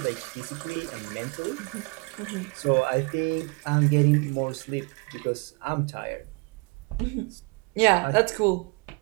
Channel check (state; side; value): quieter; left; 30.3 dB